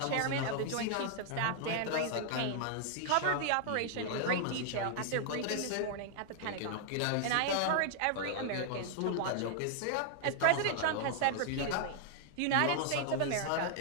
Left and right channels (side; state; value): both; different; correlation -0.01